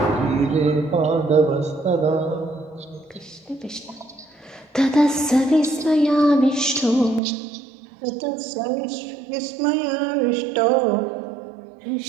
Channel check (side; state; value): left; drops out; at 7.2 s